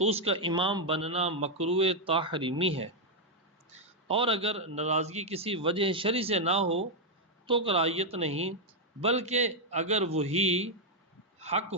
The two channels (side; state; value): both; normal; correlation -0.01